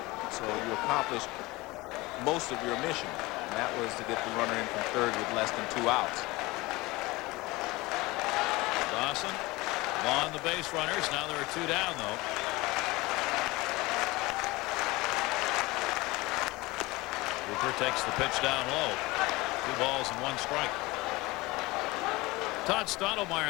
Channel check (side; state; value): right; quieter; 21.7 dB